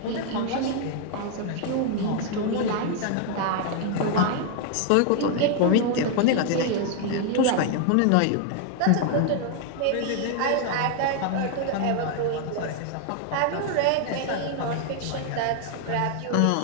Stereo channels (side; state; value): both; different; correlation 0.00